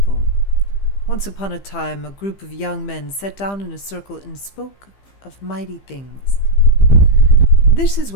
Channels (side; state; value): right; late; 15 ms